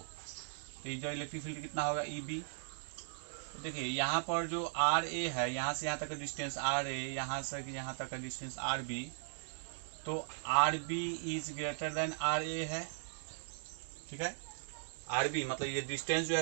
तो ये जो इलेक्ट्रिक फील्ड कितना होगा, ई बी। तो देखिए यहाँ पर जो आर ए है, यहाँ से यहाँ तक का डिस्टेंस आर ए, यहाँ से यहाँ तक का डिस्टेंस आर बी, तो R B is greater than R A है। ठीक है, आर बी मतलब ये डिस्टेंस जो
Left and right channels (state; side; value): silent; left; digital silence